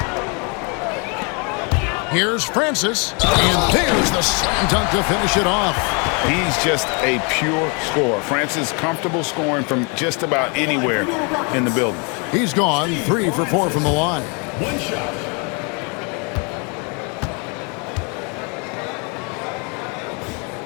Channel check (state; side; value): quieter; right; 34.1 dB